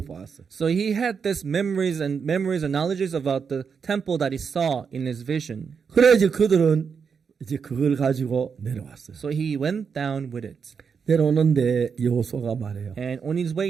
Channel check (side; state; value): left; quieter; 6.2 dB